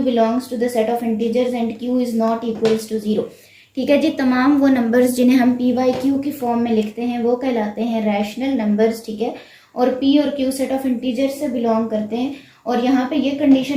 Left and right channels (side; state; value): both; identical; correlation 1.00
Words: belongs to the set of integers and q is not equals to 0। ठीक है जी, तमाम वो numbers जिन्हें हम p by q की form में लिखते हैं वो कहलाते हैं रैशनल नंबर्स। ठीक है, और p और q सेट ऑफ इंटीजर्स से बिलोंग करते हैं। और यहाँ पे ये